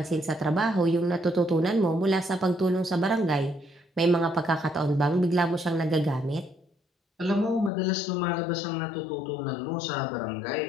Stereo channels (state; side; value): drops out; right; at 7.7 s